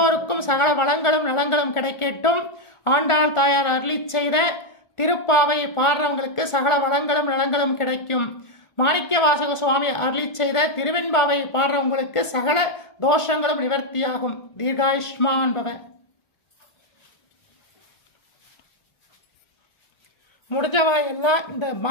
சகல வளங்களும் நலங்களும் கிடைக்கட்டும். ஆண்டாள் தாயார் அருளிச் செய்த திருப்பாவையை பாடுறவங்களுக்கு சகல வளங்களும் நலங்களும் கிடைக்கும். மாணிக்கவாசக சுவாமி அருளிச் செய்த திருவெண்பாவையை பாடுறவங்களுக்கு சகல தோஷங்களும் நிவர்த்தியாகும். தீர்காயுஷ்மான் பவ. முடிஞ்சவா எல்லாம் இந்த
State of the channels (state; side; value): late; right; 1.4 ms